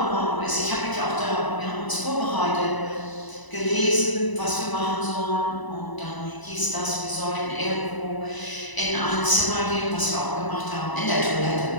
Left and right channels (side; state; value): right; late; 1.0 ms